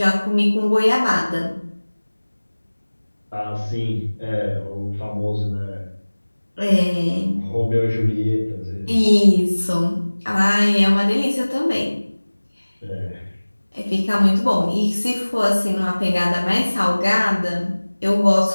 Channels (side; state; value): both; inverted; correlation -1.00